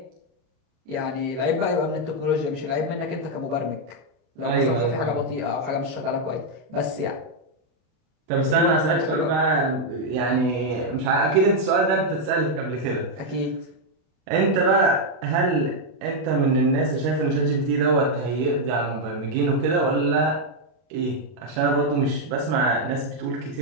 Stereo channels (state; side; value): late; left; 32 ms